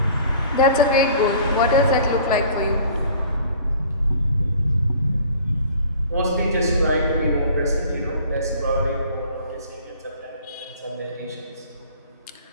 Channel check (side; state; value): both; inverted; correlation -0.49